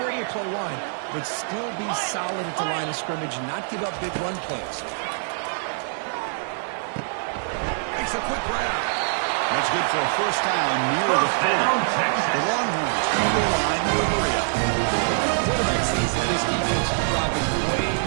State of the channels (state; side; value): silent; left; digital silence